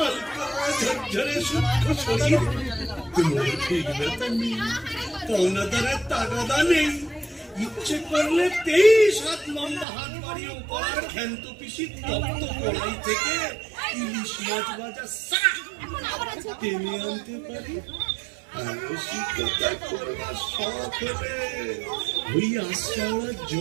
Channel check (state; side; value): drops out; left; at 9.9 s